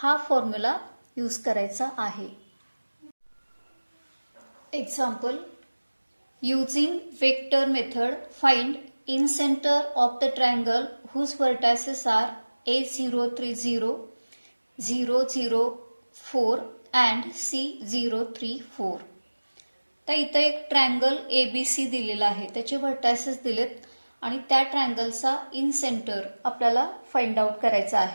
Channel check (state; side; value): inverted; both; correlation -1.00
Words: फॉर्म्युला यूज करायचा आहे. Example, using vector method find incentre of the triangle whose vertices are A030, 004 and C034. तर इथं एक ट्रायंगल ABC दिलेला आहे, त्याचे व्हर्टायसेस दिलेत आणि त्या ट्रायंगलचा इन सेंटर आपल्याला फाइंड आउट करायचा